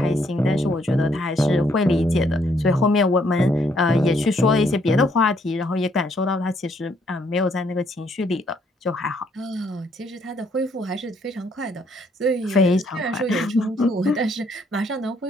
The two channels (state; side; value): normal; both; correlation 0.69